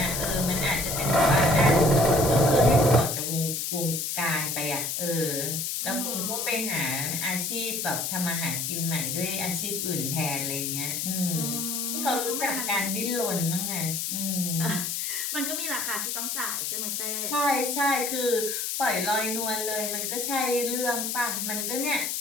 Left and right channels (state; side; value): noise; left; hiss, 2 dB below the sound